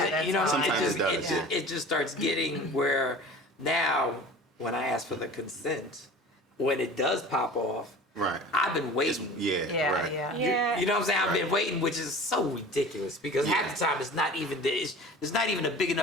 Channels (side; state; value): both; normal; correlation 0.40